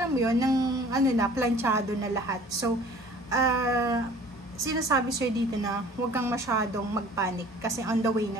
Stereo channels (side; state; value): both; normal; correlation 0.49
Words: mo yun, ng planchado na lahat. So, sinasabi sa'yo dito na huwag kang masyadong magpanic kasi on the way